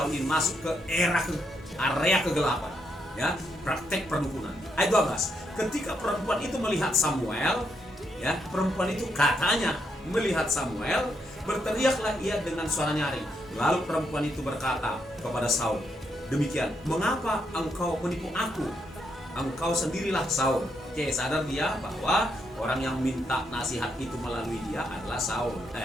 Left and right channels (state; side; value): normal; both; correlation 0.78